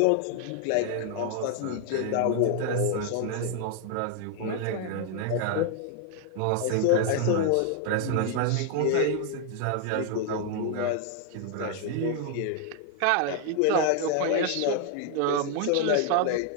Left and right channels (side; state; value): both; different; correlation 0.00